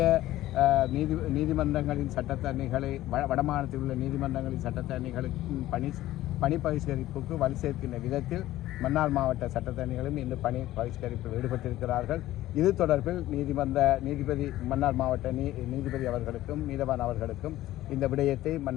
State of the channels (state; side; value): quieter; right; 15.1 dB